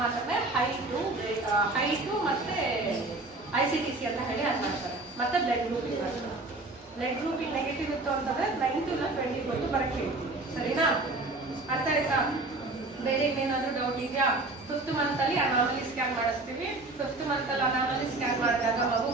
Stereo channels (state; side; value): quieter; left; 3.0 dB